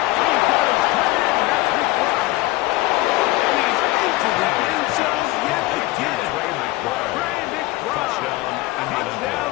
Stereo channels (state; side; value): quieter; right; 19.7 dB